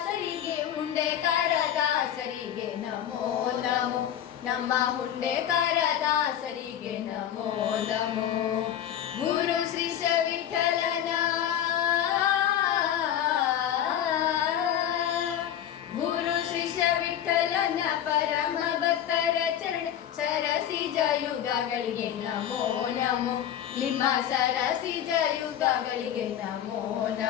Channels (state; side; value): quieter; right; 10.4 dB